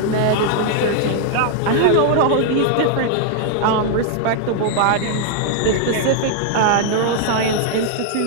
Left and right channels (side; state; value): both; different; correlation 0.00